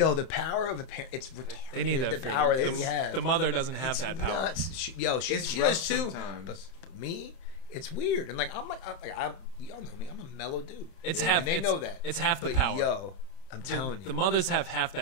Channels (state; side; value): late; right; 31 ms